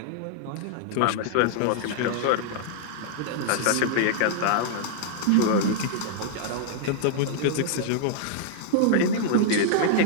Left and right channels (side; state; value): both; different; correlation -0.01